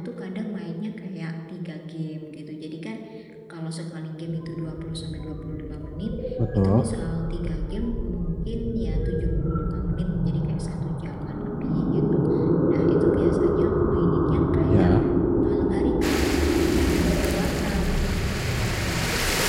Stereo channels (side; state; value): both; identical; correlation 1.00